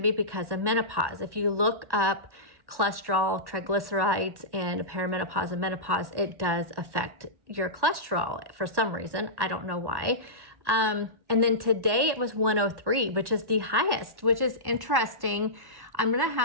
be because of menopause. If you look up cholesterol, triglycerides, and perimenopause and menopause, it does affect your cholesterol for some reason. I don't know why. And then today it was 103, which is the highest, which is interesting. I'm going to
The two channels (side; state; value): left; late; 1.1 ms